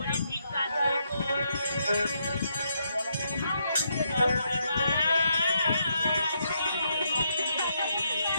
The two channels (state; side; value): inverted; both; correlation -0.77